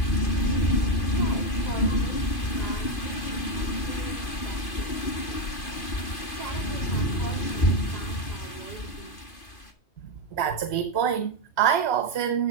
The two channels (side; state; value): right; late; 2.5 ms